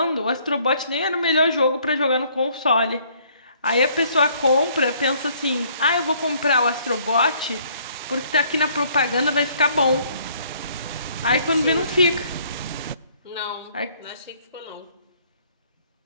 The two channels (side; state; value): both; inverted; correlation -0.62